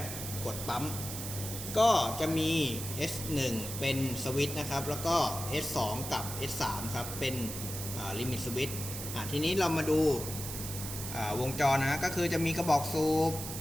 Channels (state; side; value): noise; right; hiss, 7 dB below the sound